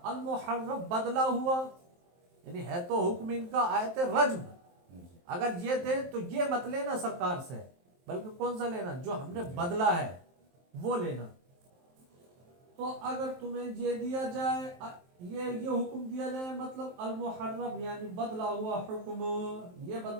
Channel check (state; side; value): late; left; 23 ms